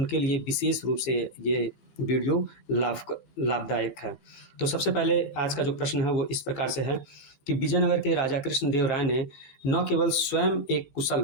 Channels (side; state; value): right; late; 14 ms